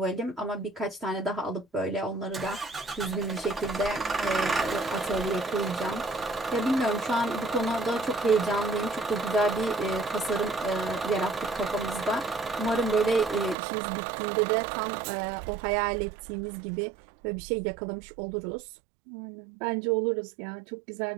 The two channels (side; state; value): left; drops out; at 13.6 s